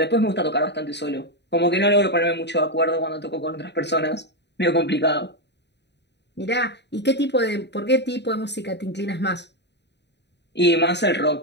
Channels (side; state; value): right; late; 0.50 ms